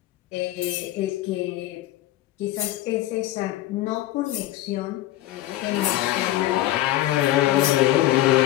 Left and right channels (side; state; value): right; quieter; 15.0 dB